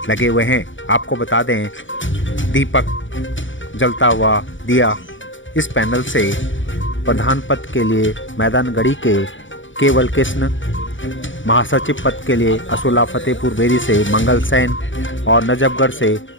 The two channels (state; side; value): late; right; 0.56 ms